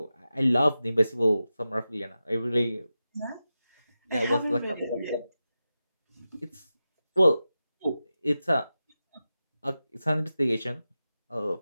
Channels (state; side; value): inverted; both; correlation -0.92